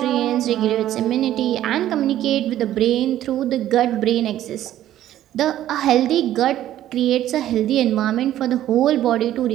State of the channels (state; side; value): quieter; left; 12.6 dB